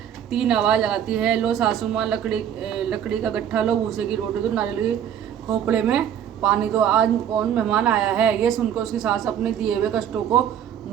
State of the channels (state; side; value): quieter; left; 9.5 dB